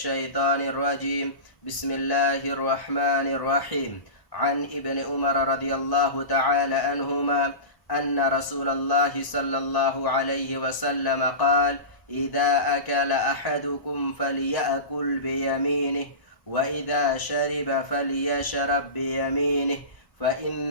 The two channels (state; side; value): late; right; 1.0 ms